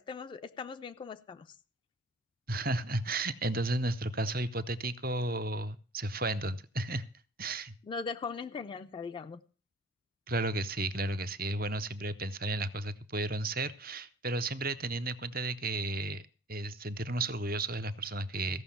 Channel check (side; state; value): both; normal; correlation 0.49